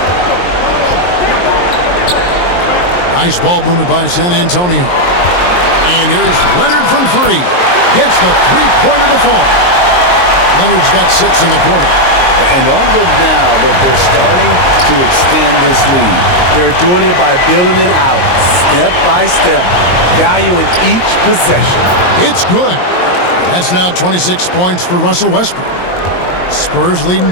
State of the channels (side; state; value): right; late; 22 ms